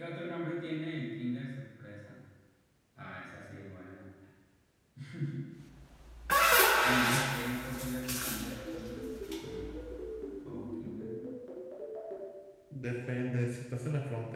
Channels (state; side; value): identical; both; correlation 1.00